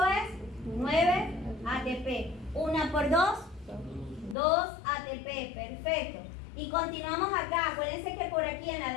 es? 9 ATP. 1 por 2, 2 ATP. Perfecto. Y continuamos acá. Acuérdense que por aquí en la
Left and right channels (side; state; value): right; drops out; at 4.4 s